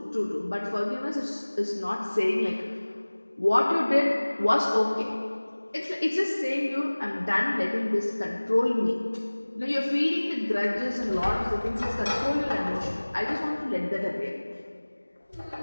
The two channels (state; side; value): inverted; both; correlation -1.00